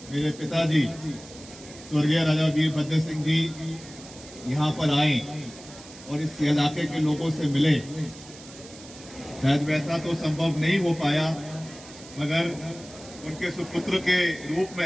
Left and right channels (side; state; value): right; noise; hiss, 18 dB below the sound